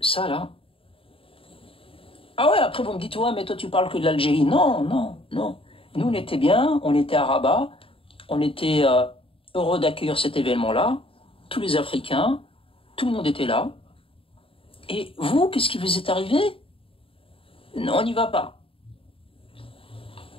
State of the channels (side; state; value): right; late; 0.26 ms